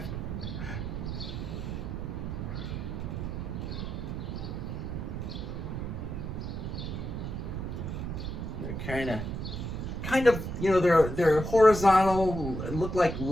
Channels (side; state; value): right; noise; rumble, 4 dB below the sound